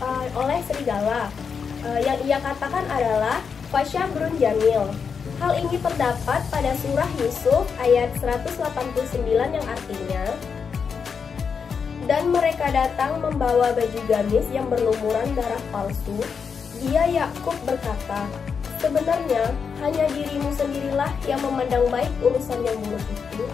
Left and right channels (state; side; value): quieter; right; 6.1 dB